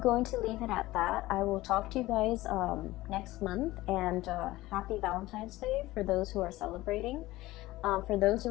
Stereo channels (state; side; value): quieter; right; 17.9 dB